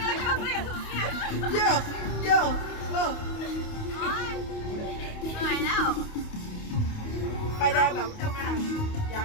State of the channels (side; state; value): right; late; 28 ms